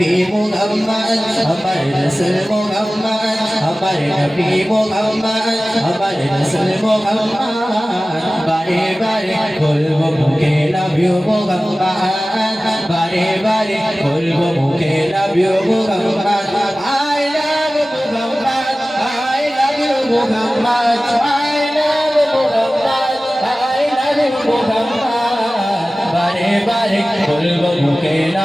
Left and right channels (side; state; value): both; normal; correlation 0.97